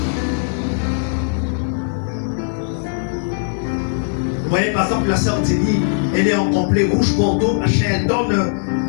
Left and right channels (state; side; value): silent; right; 67 dB below the other